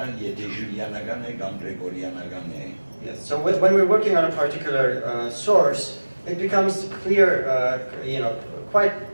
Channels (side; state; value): both; inverted; correlation -1.00